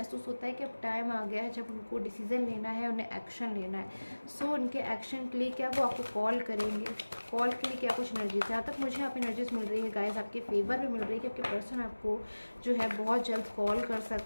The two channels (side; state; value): both; inverted; correlation -1.00